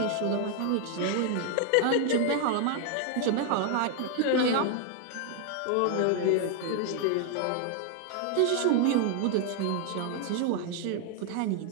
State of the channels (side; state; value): both; different; correlation 0.00